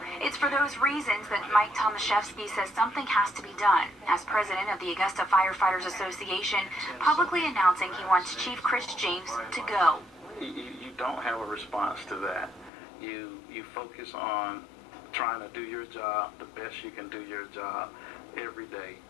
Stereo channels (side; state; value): right; drops out; at 12.7 s